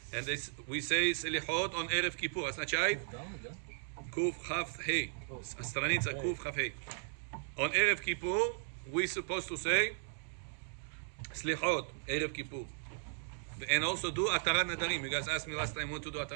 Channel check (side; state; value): left; silent; digital silence